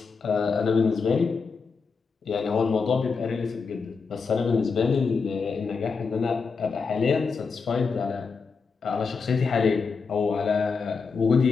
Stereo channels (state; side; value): quieter; right; 5.0 dB